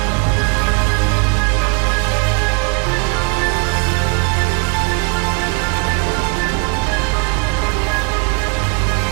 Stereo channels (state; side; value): quieter; left; 32.1 dB